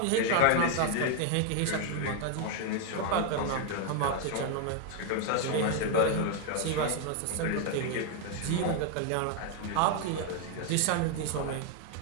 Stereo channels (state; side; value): different; both; correlation 0.01